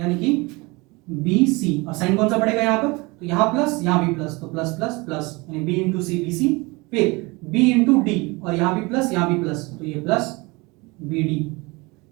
कि bc, और साइन कौन सा पड़ेगा यहाँ पर, तो यहाँ प्लस यहाँ भी प्लस, तो प्लस प्लस प्लस, यानी b * c bc, फिर b * d और यहाँ भी प्लस यहाँ भी प्लस, तो ये प्लस bd।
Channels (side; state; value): left; quieter; 25.2 dB